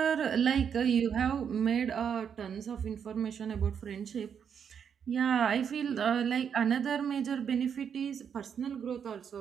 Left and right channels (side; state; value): left; quieter; 7.5 dB